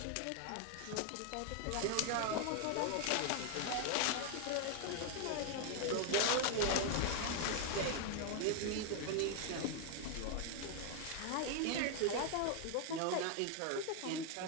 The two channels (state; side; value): different; both; correlation 0.00